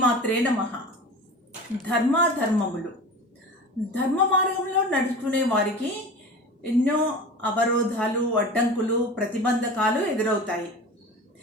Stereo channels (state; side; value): normal; both; correlation 0.34